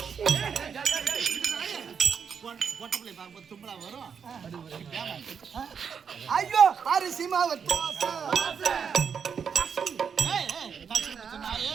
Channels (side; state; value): left; quieter; 6.8 dB